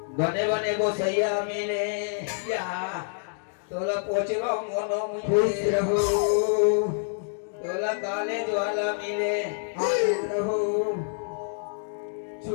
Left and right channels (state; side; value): silent; right; digital silence